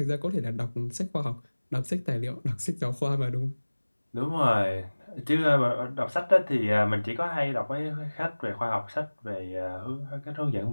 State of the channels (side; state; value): both; inverted; correlation -1.00